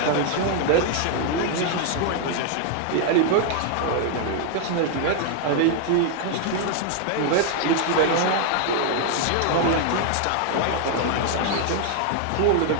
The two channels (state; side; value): different; both; correlation 0.00